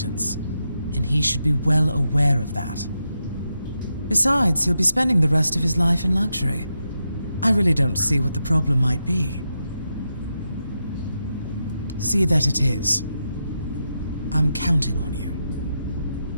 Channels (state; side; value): inverted; both; correlation -0.86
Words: and he should be well aware of that. Besides, he'll be spending the rest of his life in luxury. I really don't see what the problem might be. See that it is. I'm counting on you.